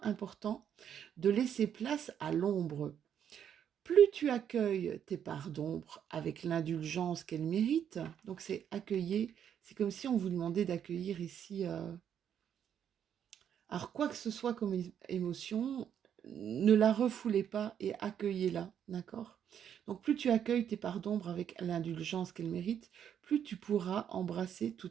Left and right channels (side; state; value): left; quieter; 8.9 dB